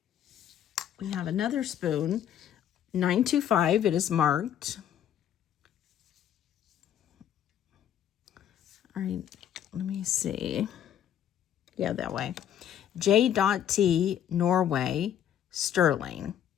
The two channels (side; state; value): right; quieter; 10.1 dB